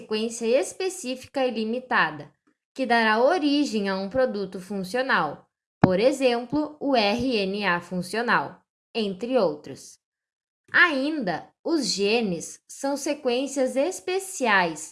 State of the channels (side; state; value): both; identical; correlation 1.00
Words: específica e limitada, que dará origem a um produto funcional, por exemplo, o RNA funcional, entre outros. Ainda, os genes são sequências